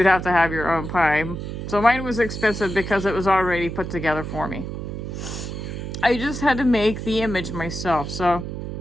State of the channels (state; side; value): noise; right; hum, 6 dB below the sound